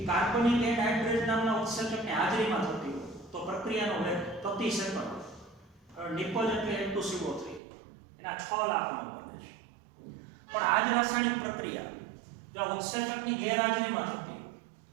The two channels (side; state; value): left; drops out; at 7.6 s